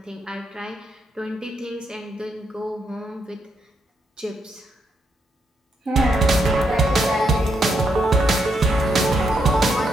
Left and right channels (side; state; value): both; normal; correlation 0.78